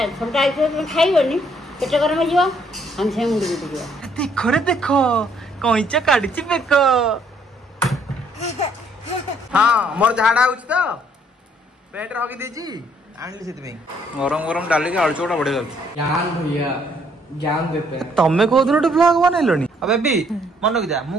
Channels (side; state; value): both; normal; correlation 0.66